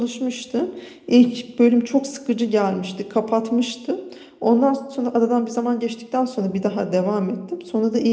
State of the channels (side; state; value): both; identical; correlation 1.00